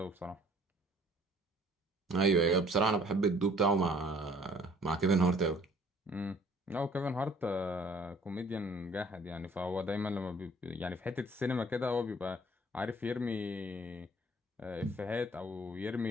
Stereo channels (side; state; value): both; normal; correlation 0.57